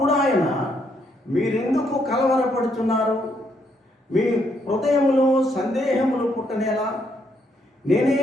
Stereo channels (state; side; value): normal; both; correlation 0.73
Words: ఆయన, మీరెందుకు కలవరపడుతున్నారు? మీ హృదయములో సందేహములు పుట్టనేలా? నేనే